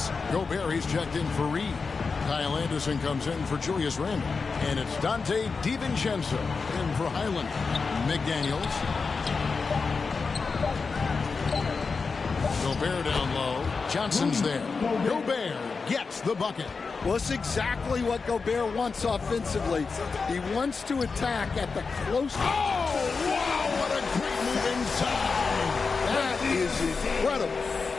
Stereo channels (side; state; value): right; quieter; 4.7 dB